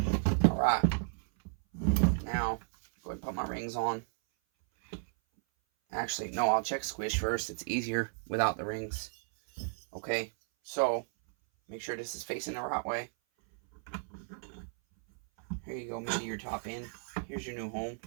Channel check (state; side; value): silent; left; 55 dB below the other